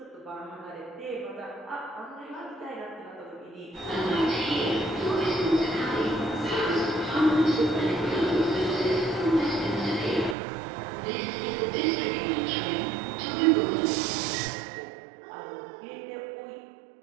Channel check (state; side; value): drops out; left; at 10.4 s